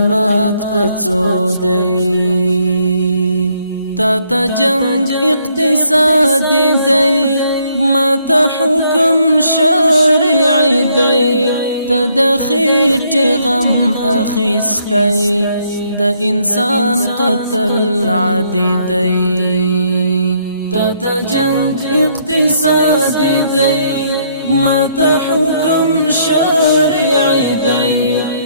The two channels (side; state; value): both; inverted; correlation -0.69